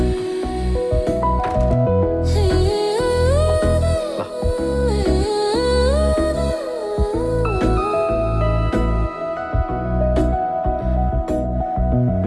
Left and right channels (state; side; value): identical; both; correlation 1.00